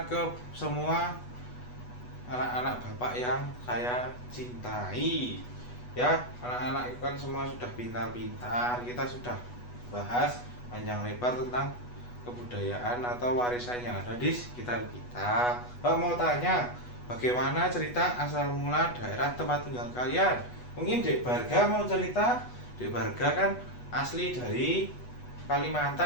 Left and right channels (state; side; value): late; right; 8.2 ms